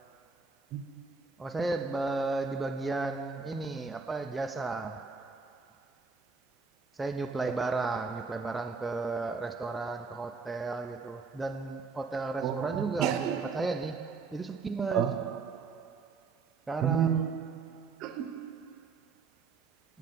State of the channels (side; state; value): left; quieter; 4.8 dB